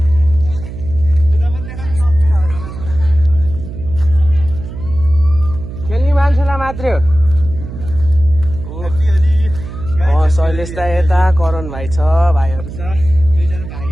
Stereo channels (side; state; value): right; noise; hum, 10 dB below the sound